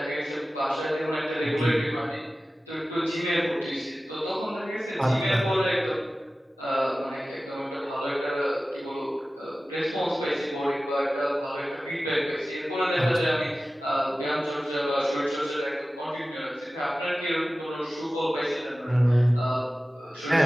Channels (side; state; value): both; normal; correlation 0.96